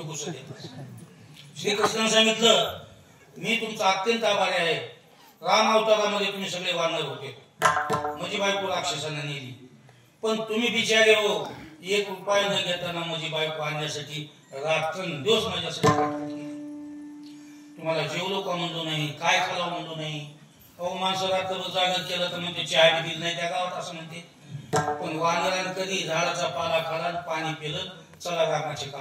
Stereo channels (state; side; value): identical; both; correlation 1.00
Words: घुसत येतात. श्रीकृष्णाने सांगितलं मी तुमचा अत्यंत आभारी आहे. राम अवतारामध्ये तुम्ही सगळे वानर होते, माझी बायको राक्षसांना नेली, पण तुम्ही बिचारे हो 1 रुपया न घेताना माझी बायको आणण्यासाठी रात्रंदिवस माझ्यासाठी तुम्हाला जेवलो का म्हणलो नाही, काय खालाव म्हणलो नाही. अहो माणसं रात्रभर जागर केलं तर म्हणते चहा बी दिली नाही त्या गावात असं म्हणते. पण वानरानं कधी झाडाचा पाला खाला पाणी पिलं चला रामाची